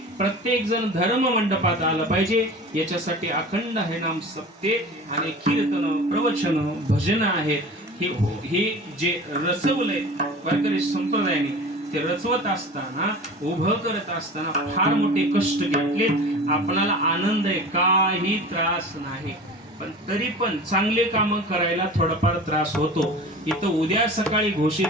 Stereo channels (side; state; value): both; normal; correlation 0.37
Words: प्रत्येक जण धर्म मंडपात आलं पाहिजे याच्यासाठी अखंड हरिनाम सप्ते आणि कीर्तन प्रवचन भजन आहेत हे जे रचवलंय वारकरी संप्रदायाने ते रचवत असताना उभं करत असताना फार मोठे कष्ट घेतले आपणाला आनंद आहे काही त्रास नाही पण तरी पण चांगले काम करायला थोडाफार त्रास होतो इथं उद्या सकाळी घोषित